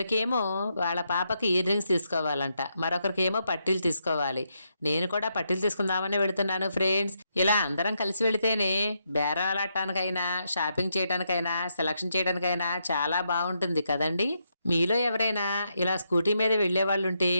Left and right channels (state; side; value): inverted; both; correlation -0.81